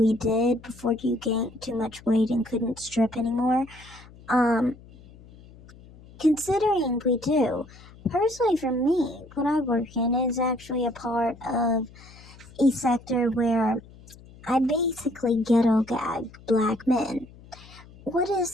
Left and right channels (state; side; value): noise; left; hum, 22 dB below the sound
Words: did before you gained too much weight and couldn't strip anymore. Considering we do, personally for me, what I work in is actually a part of a sector where I basically ghetto gag black men. What